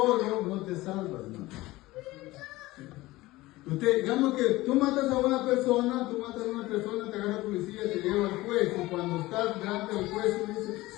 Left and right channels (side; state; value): right; quieter; 18.8 dB